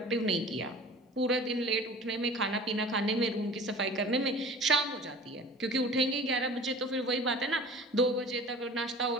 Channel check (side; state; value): both; normal; correlation 0.41